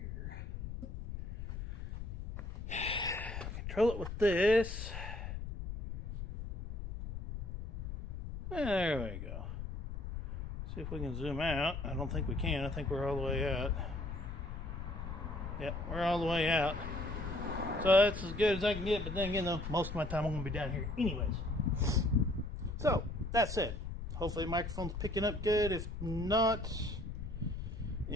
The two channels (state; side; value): noise; left; rumble, 7 dB below the sound